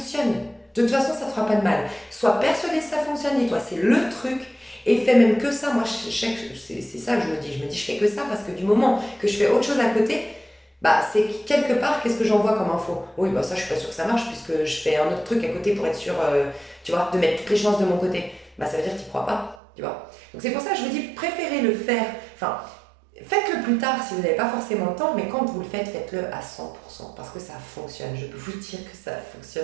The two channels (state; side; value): drops out; left; at 19.6 s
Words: De toute façon, ça ne te fera pas de mal. Sois persuadé que ça fonctionne, dis-toi, c'est le truc. Et fais même que ça. Moi, c'est ça que je me dis. Je me dis, je fais que ça parce que du moment que je fais autre chose à côté, bah, c'est quelque part, qu'est-ce que j'envoie comme info? Oui, bah ça, je suis pas sûre que ça marche puisque je fais un autre truc à côté pour être sûr, tu vois, de mettre toutes les chances de mon côté. Bah, ça veut dire que tu n'y crois pas, tu vois. Donc, c'est pour ça que je vous dis, préférez le faire. Enfin, faites-le plus tard si vous n'avez pas forcément le temps, mais quand vous le faites, faites-le à 100% parce que ça fonctionne. Je peux vous dire que ça